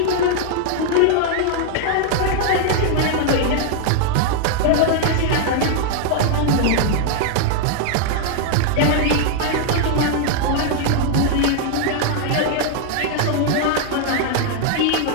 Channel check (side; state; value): both; different; correlation 0.00